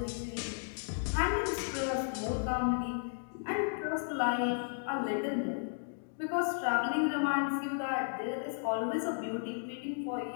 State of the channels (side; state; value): right; silent; digital silence